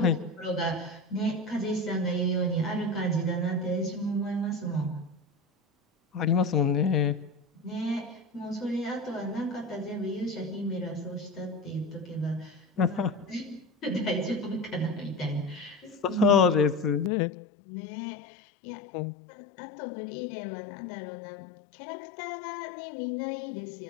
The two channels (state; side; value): drops out; right; at 17.1 s